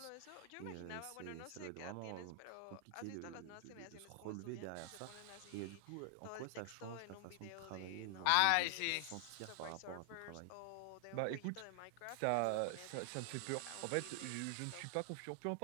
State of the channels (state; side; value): different; both; correlation 0.00